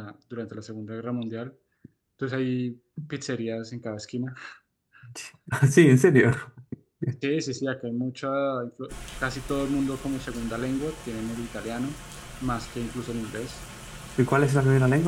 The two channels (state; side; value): identical; both; correlation 1.00